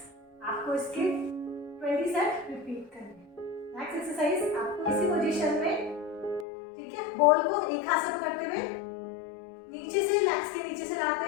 आपको इसके 20 सेट रिपीट करने। नेक्स्ट एक्सरसाइज आपको इसी पोजीशन में, ठीक है, बॉल को एक हाथ से पकड़ते हुए नीचे से, लेग्स के नीचे से लाते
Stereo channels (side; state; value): right; drops out; at 6.5 s